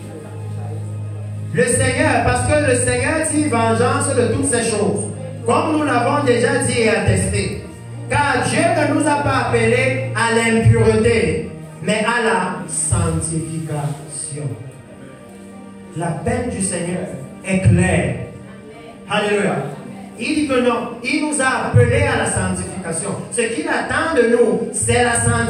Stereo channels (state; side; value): identical; both; correlation 1.00